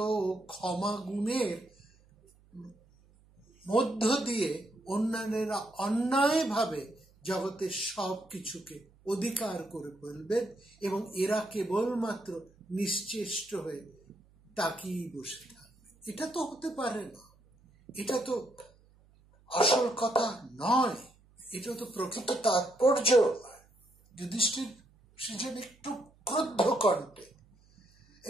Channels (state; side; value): noise; right; hum, 30 dB below the sound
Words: ও ক্ষমা গুণের মধ্য দিয়ে অন্যান্যরা অন্যায়ভাবে জগতের সব কিছুকে অধিকার করে ফেলবেন এবং এরা কেবলমাত্র নিশ্চেষ্ট হয়ে তাকিয়ে বসে থাকবে। এটা তো হতে পারে না, এটা তো আসল কথা নয়, এটা তো প্রকৃত তাৎপর্য নয়। যুধিষ্ঠির সেজন্য একটু ক্রুদ্ধ কণ্ঠে